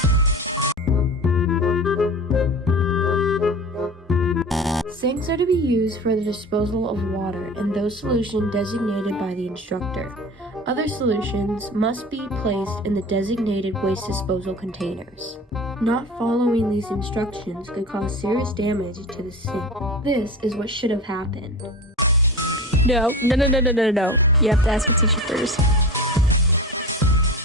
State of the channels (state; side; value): normal; both; correlation 0.33